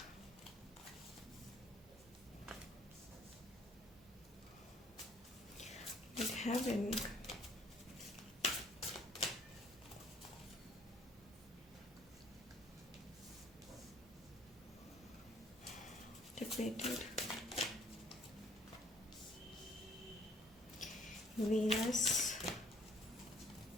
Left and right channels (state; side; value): normal; both; correlation 0.59